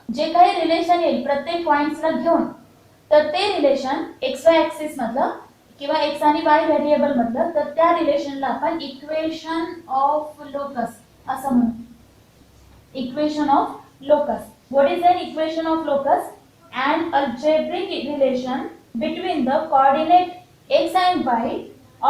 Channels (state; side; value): identical; both; correlation 1.00